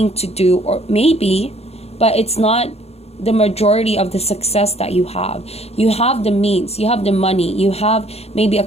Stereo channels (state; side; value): late; right; 0.30 ms